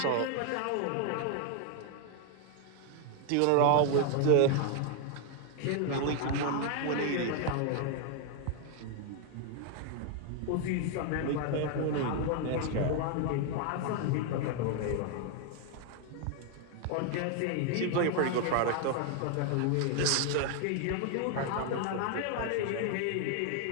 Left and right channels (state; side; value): different; both; correlation 0.00